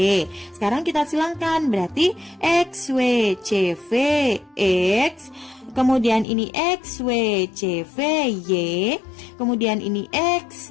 Sekarang kita silangkan, berarti XWCV X. Kemudian ini XWCV Y. Kemudian ini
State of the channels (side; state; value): right; drops out; at 6.2 s